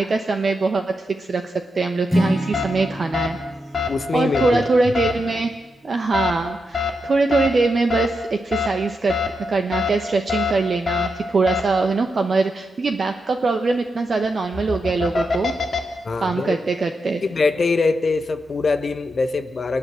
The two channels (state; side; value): normal; both; correlation 0.85